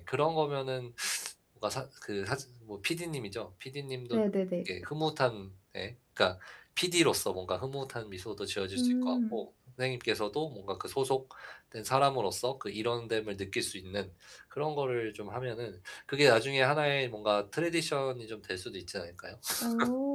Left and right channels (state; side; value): identical; both; correlation 1.00